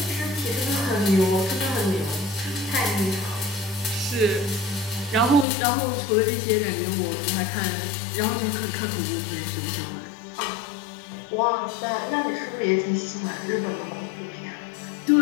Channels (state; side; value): drops out; right; at 5.5 s